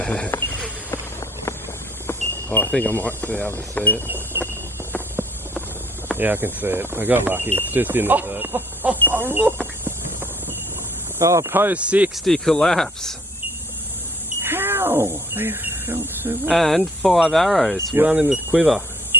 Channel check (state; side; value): normal; both; correlation 0.60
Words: Oh, I think I might be able to see it. Yeah, I can see it. I got lucky. It's just in the dirt. Oh, look! Oh, post 60 collapse. How? They felt so well. And 5 arrows. Yep. One in the quiver.